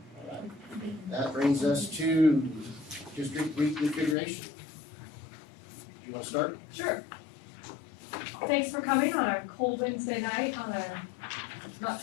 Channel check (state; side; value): drops out; right; at 4.2 s